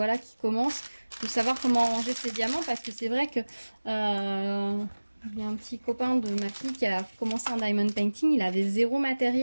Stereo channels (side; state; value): both; inverted; correlation -1.00